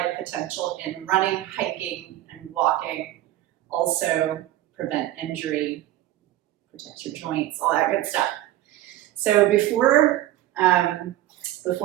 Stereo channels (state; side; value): quieter; left; 14.5 dB